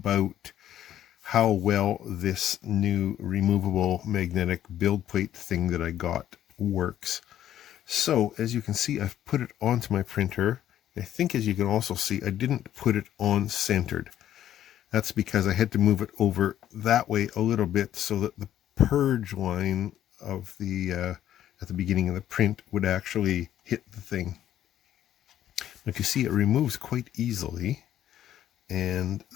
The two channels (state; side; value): quieter; right; 11.5 dB